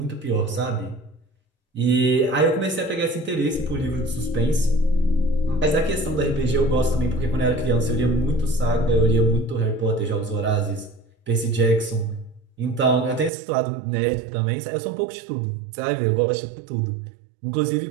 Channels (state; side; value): drops out; left; at 13.3 s